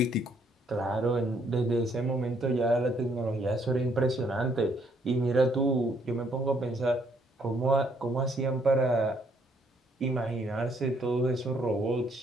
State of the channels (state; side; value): normal; both; correlation 0.68